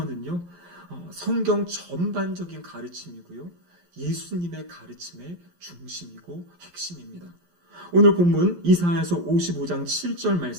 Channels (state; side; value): late; left; 11 ms